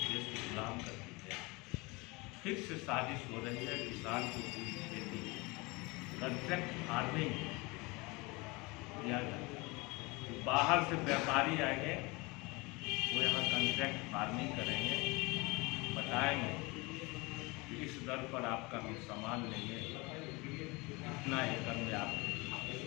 देश को गुलाम कर दिया। फिर से साजिश हो रही है किसान को पूरी खेती कॉन्ट्रैक्ट फार्मिंग किया जाए। बाहर से व्यापारी आएंगे, वो यहाँ कॉन्ट्रैक्ट फार्मिंग करेंगे, बताएंगे कि इस दर पर आपका हम सामान लेंगे, इतना एकड़ में आप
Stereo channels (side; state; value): right; quieter; 25.5 dB